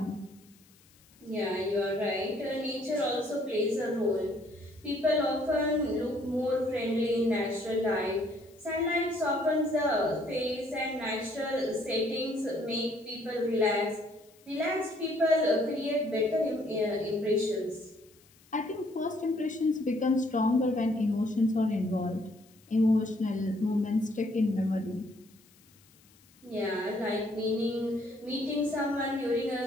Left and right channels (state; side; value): noise; left; hiss, 29 dB below the sound